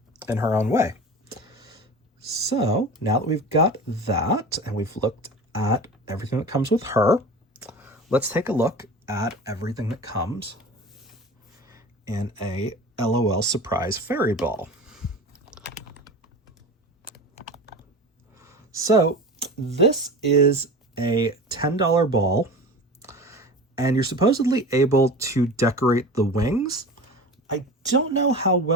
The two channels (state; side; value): normal; both; correlation 0.33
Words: in her own way. So now that we've got that and we've looked at everything that comes with her, let's take a look at everything that comes in a LOL Surprise Fairy Ball. So this is a $10 ball, and you're supposedly able to decorate the wings. I don't know how